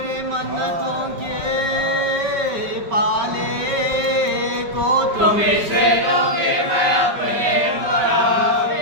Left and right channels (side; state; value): left; late; 5.2 ms